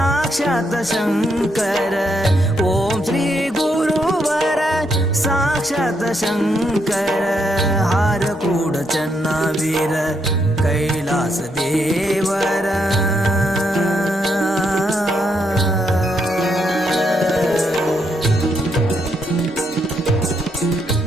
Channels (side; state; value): both; normal; correlation 0.77